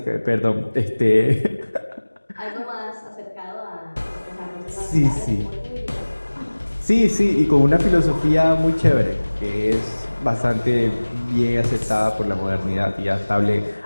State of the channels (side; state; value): both; inverted; correlation -1.00